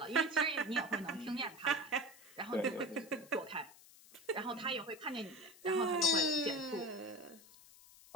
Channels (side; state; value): left; noise; hiss, 22 dB below the sound